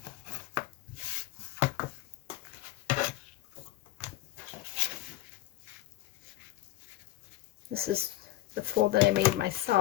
This is the fold that I made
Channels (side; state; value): right; quieter; 15.8 dB